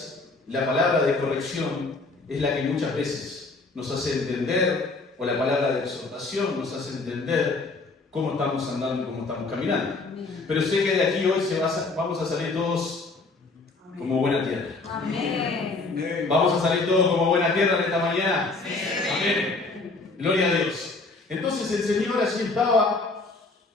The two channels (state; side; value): quieter; right; 3.6 dB